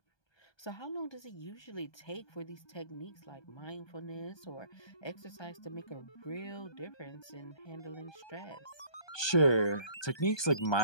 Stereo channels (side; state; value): right; late; 1.2 ms